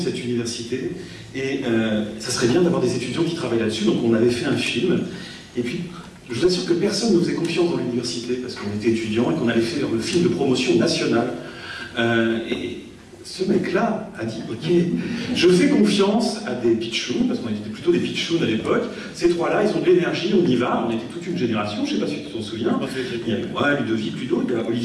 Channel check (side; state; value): both; identical; correlation 1.00